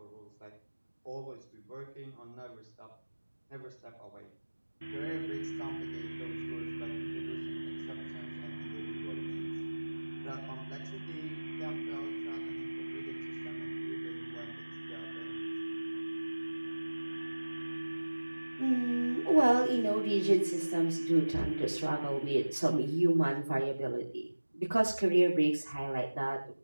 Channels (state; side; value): inverted; both; correlation -1.00